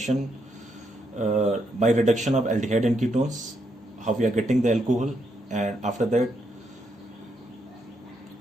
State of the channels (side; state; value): both; normal; correlation 0.78